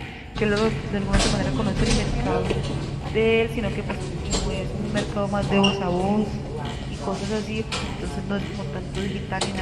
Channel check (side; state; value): both; identical; correlation 1.00